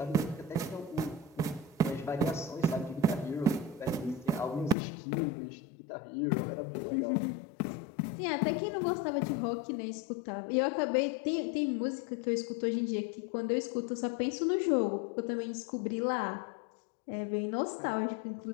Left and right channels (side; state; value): right; drops out; at 4.8 s